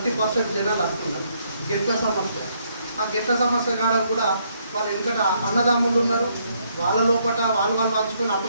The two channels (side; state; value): both; inverted; correlation -0.72